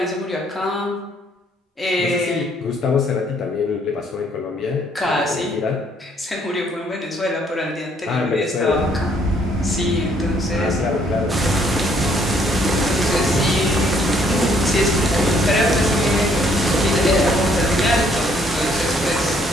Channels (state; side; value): normal; both; correlation 0.65